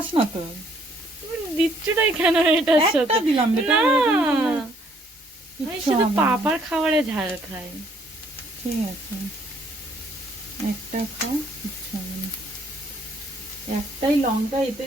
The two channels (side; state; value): both; normal; correlation 0.65